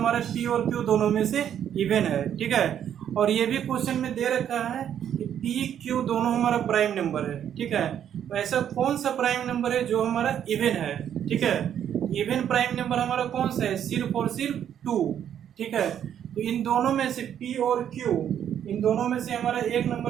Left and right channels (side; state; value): left; quieter; 9.6 dB